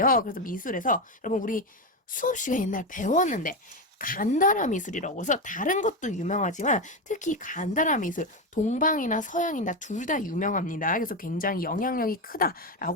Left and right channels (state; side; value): normal; both; correlation 0.13